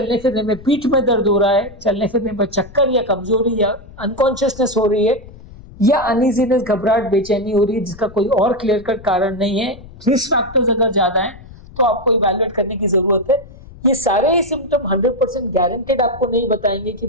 फिरने में पीठ में दर्द हो रहा है, चलने फिरने में चक्कर या कमजोरी या अनकॉन्शियसनेस हो रही है, या अनइजीनेस घबराहट बेचैनी हो रही है जिसका कोई और क्लियर कट कारण नहीं है, रिस्क फैक्टर्स अगर ज्यादा हैं तो आपको इवैल्यूएट करने की जरूरत है। ये सारे ही सिम्टम 100% गारंटेड आपको नहीं बताएंगे कि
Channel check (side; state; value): left; noise; rumble, 19 dB below the sound